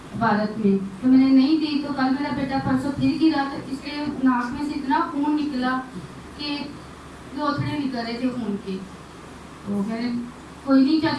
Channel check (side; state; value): both; identical; correlation 1.00